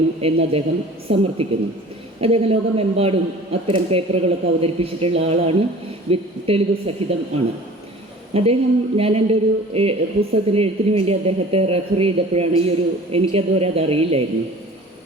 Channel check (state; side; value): normal; both; correlation 0.44